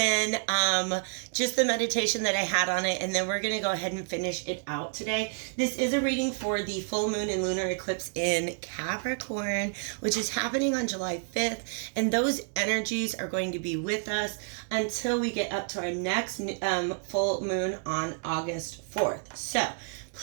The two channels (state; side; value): silent; left; 56 dB below the other